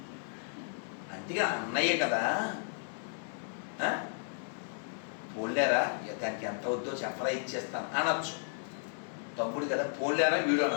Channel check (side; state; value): right; silent; digital silence